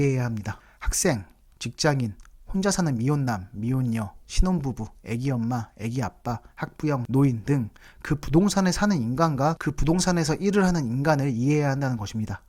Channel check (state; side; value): identical; both; correlation 1.00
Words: 합니다. 학생, 직장인, 혼자 사는 미혼남, 미혼녀, 신혼부부, 애기 엄마, 애기 아빠, 학부형, 노인 등 그 부동산에 사는 인간과 그 부동산에서 일을 하는 인간을 이해해야 한다는 것입니다.